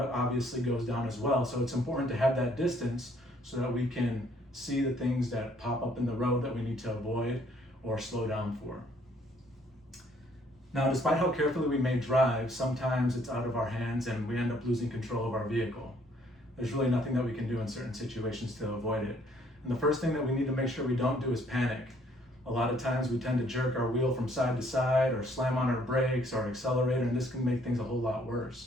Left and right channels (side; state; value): both; normal; correlation 0.64